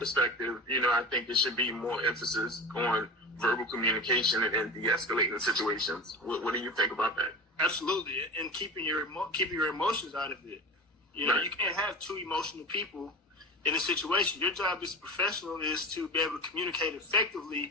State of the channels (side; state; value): both; normal; correlation 0.30